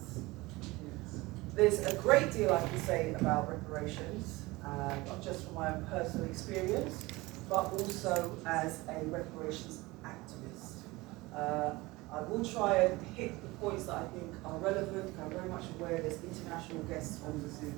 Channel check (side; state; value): left; quieter; 21.5 dB